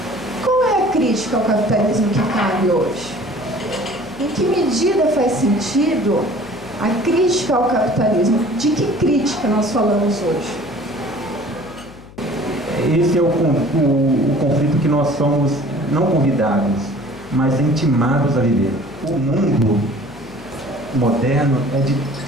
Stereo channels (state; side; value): noise; left; hum, 20 dB below the sound